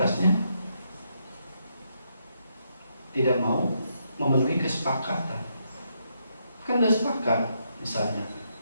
tidak mau memenuhi kesepakatan. Kan udah sepakat, misalnya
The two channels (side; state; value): both; inverted; correlation -0.78